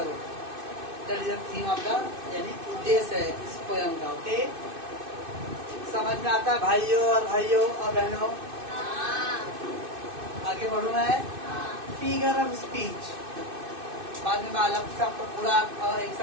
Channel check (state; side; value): late; left; 2.6 ms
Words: That is the theme of the, यानी उद्देश्य है इस पोएम का। ओके, समझ में आता है भाइयों और बहनों? आगे बढ़ू मैं। फिगर ऑफ स्पीच, बाद में मैं अलग से आपको पूरा एक